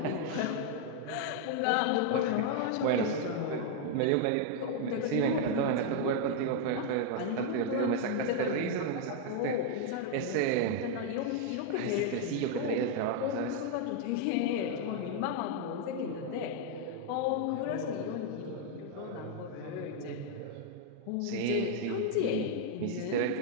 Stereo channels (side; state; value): both; different; correlation 0.00